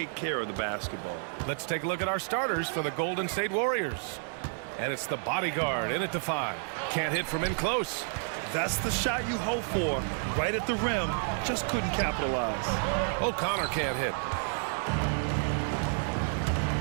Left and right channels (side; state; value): left; silent; 56 dB below the other